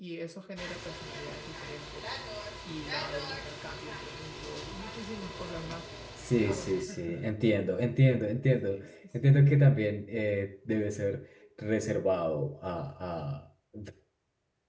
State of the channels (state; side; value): identical; both; correlation 1.00